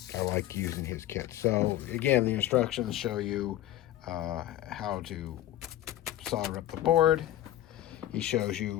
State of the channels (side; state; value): right; quieter; 13.5 dB